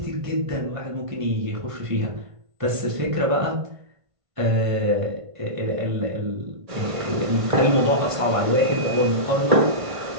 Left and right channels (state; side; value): late; left; 1.5 ms